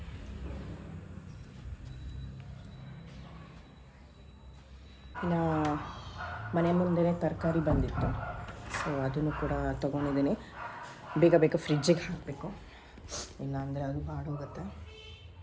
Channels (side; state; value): both; identical; correlation 1.00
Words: ಇನ್ನು ಮನೆ ಮುಂದೆನೇ ತರಕಾರಿ ಬಂದಿತ್ತು, ಸೊ ಅದನ್ನು ಕೂಡ ತೊಗೊಂಡಿದ್ದೀನಿ. ಬೇಗ ಬೇಗ ಫ್ರಿಜ್ಜಿಗೆ ಹಾಕಬೇಕು, ಇಲ್ಲಾಂದರೆ ಅದು ಬಾಡೋಗುತ್ತೆ.